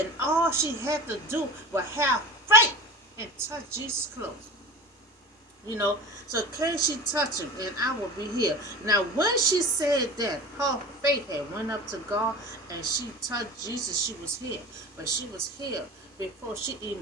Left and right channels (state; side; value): normal; both; correlation 0.35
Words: all she had to do was have faith and touch Jesus' clothes. So can she touch him and I will be healed? Now when she said that, her faith had went up to God and she touched Jesus, she was healed. But she was healed before she